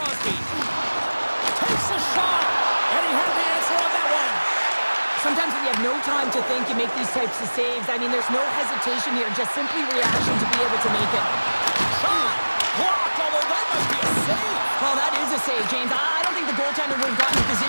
Takes a shot, and he had the answer on that one. Sometimes when you have no time to think, you make these types of saves. I mean, there's no hesitation here, just simply reaction to be able to make it. Shot! Blocked, although that might be a save. Well, that is a save, James. I don't think the goaltender would have gotten the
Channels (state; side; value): inverted; both; correlation -1.00